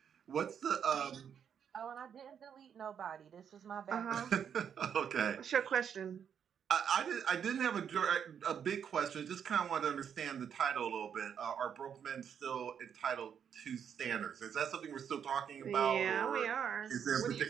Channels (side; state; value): left; quieter; 8.0 dB